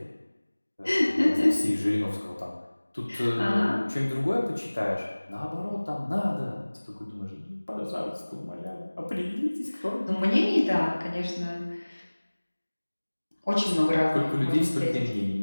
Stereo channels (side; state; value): both; inverted; correlation -1.00